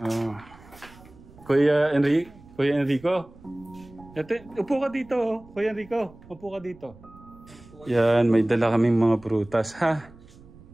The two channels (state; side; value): noise; right; rumble, 23 dB below the sound